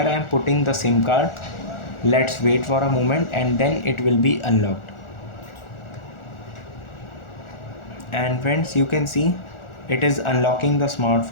I am putting the SIM card. Let's wait for a moment and then it will be unlocked. And friends, you can see it is unlocking the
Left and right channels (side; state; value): right; late; 1.4 ms